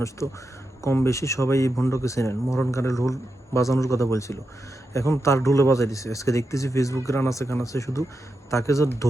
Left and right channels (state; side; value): normal; both; correlation 0.88